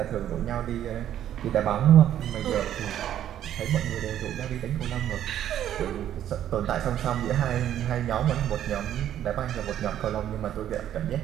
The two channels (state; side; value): quieter; left; 11.0 dB